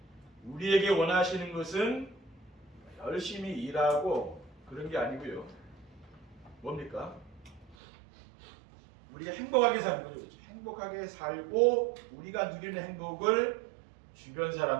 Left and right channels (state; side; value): drops out; left; at 7.8 s